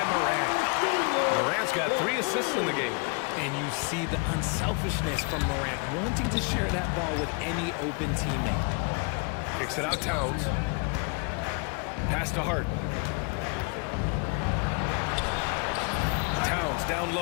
Moran. Moran's got 3 assists in the game. And you see the unselfishness from Morant, wanting to share that ball with any open teammate. Kicks it out, Towns. Pass to Hart. Towns down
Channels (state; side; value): quieter; right; 34.3 dB